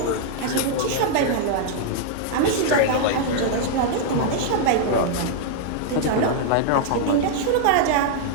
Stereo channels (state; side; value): different; both; correlation -0.01